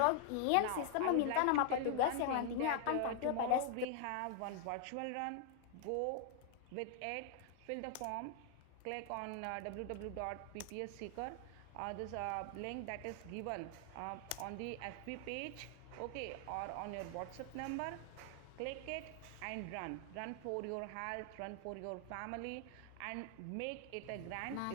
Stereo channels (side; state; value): both; different; correlation 0.00